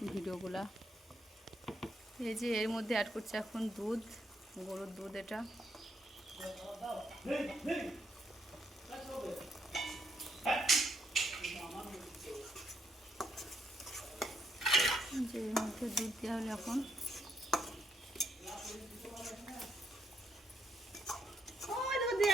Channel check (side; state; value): both; normal; correlation 0.76